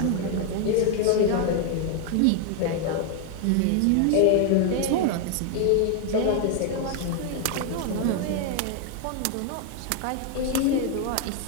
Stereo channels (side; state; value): both; different; correlation 0.00